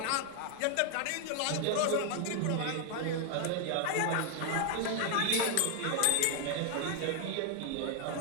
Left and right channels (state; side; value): different; both; correlation 0.00